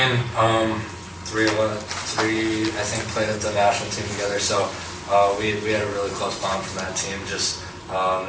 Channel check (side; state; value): both; identical; correlation 1.00